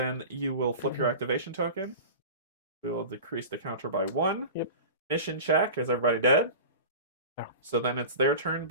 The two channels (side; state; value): both; inverted; correlation -0.33